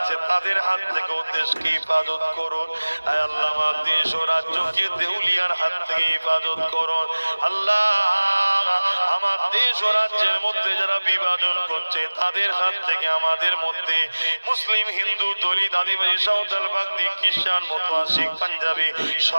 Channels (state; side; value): inverted; both; correlation -1.00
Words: তাদের হাত থেকে দেশকে হেফাজত করুন। আল্লাহ আমার দেশ ও রাজ্যকে দেউলিয়ার হাত থেকে হেফাজত করুন। আল্লাহ আমার দেশ ও রাজ্যের মধ্যে যারা বিভাজন করছে তাদের হাত থেকে আমাদের মধ্যে মুসলিম, হিন্দু, দলিত, আদিবাসী, সাঁওতাল, বাগদি, খ্রিস্টান, মতুয়া, শিখ, পাঞ্জাবি